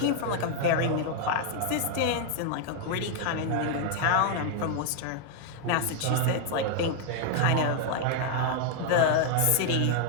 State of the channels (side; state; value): both; different; correlation 0.00